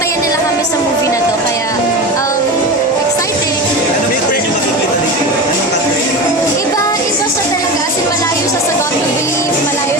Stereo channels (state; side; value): normal; both; correlation 0.26